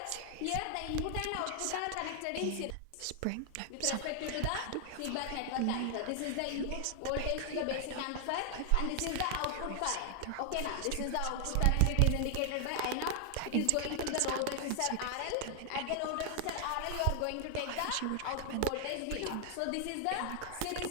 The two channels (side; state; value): both; different; correlation 0.00